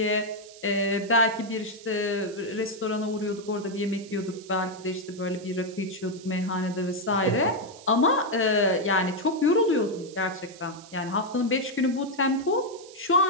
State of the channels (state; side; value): noise; right; hiss, 20 dB below the sound